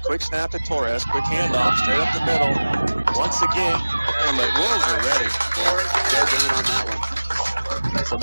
Quick snap to Torres. Quick handoff straight up the middle. Once again, but Wolves are ready. Yeah, no gain on that one. So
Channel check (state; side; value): inverted; both; correlation -1.00